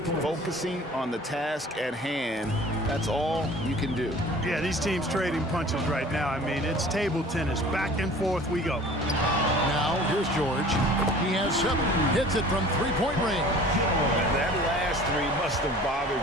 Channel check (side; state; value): both; normal; correlation 0.46